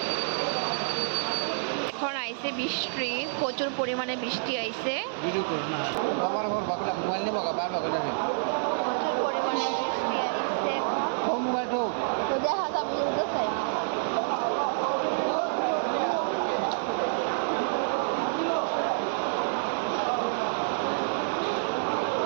এখন আইছে বৃষ্টি, প্রচুর পরিমাণে বৃষ্টি আইছে। প্রচুর পরিমাণে বৃষ্টি আইছে। তো দেখা যাবে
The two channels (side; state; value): left; silent; digital silence